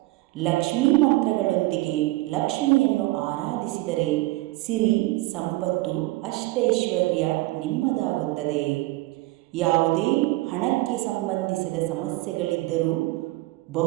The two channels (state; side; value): quieter; left; 19.9 dB